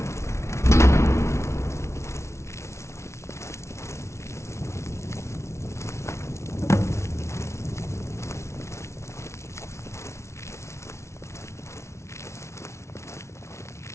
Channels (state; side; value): late; right; 0.13 ms